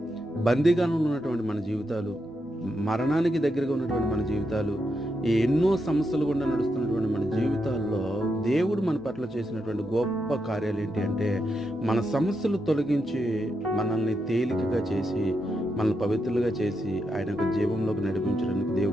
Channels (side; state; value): both; normal; correlation 0.84